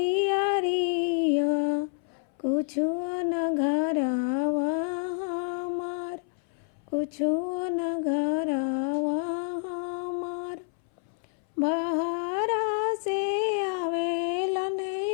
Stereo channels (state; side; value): silent; right; 59 dB below the other